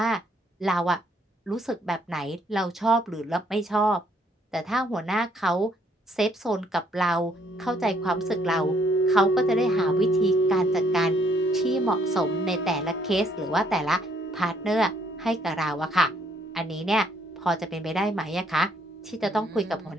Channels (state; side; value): normal; both; correlation 0.67